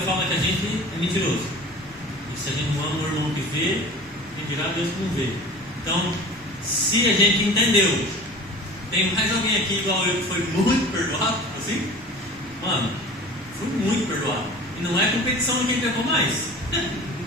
fala que a gente é mentiroso. E se a gente não ama o irmão que vê, quem dirá Deus que não vê. Então, se a gente entendeu, tem mais alguém aqui igual eu que foi muito perdoado, assim? Mano, fui muito perdoado. E não é competição de quem pegou mais.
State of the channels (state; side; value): normal; both; correlation 0.40